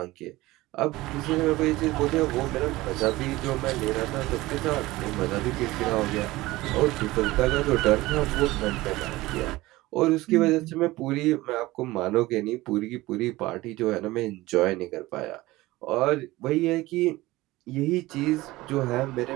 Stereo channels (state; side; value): quieter; left; 18.9 dB